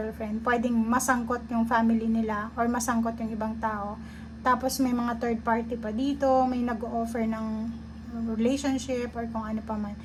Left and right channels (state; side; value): identical; both; correlation 1.00